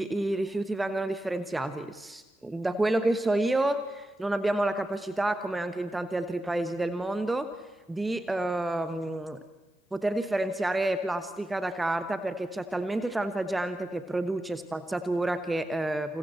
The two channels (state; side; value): normal; both; correlation 0.90